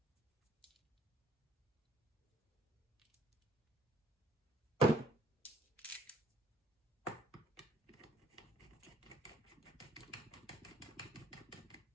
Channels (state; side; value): normal; both; correlation 0.63